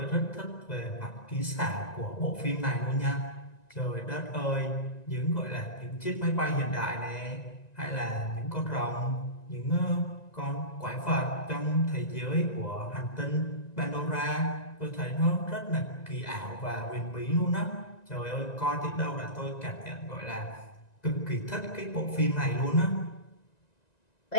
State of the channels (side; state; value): right; late; 1.9 ms